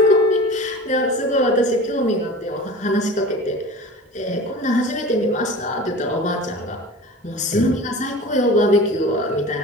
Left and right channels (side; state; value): both; normal; correlation 0.36